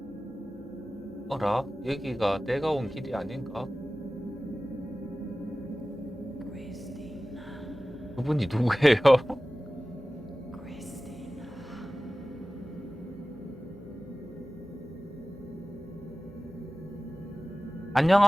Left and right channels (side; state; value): both; normal; correlation 0.96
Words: 어라? 여기가 내가 온 길이 아닌가? 그분이 누구예요?